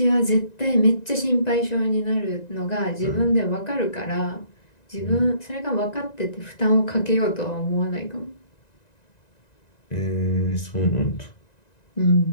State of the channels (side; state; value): right; late; 1.9 ms